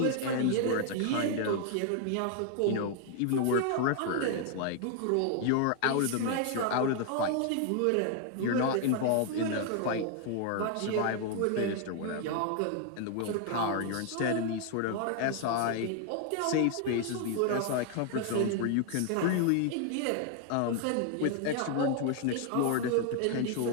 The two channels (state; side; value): different; both; correlation 0.00